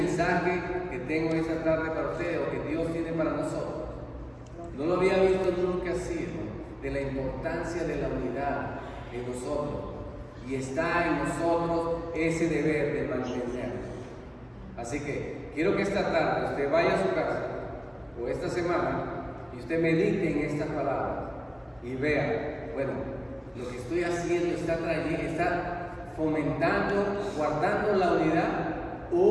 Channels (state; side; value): identical; both; correlation 1.00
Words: que tengo esta tarde para ustedes, o que Dios tiene para nosotros. No lo había visto nunca así, hermano, de la importancia de la unidad en nosotros. Y está en nosotros ese deber de mantenerlo. Así que quiero que esta tarde usted vaya a su casa, o esta semana, y usted medite en estas palabras y vea, bueno, lo que estoy haciendo está fomentando, guardando la unidad,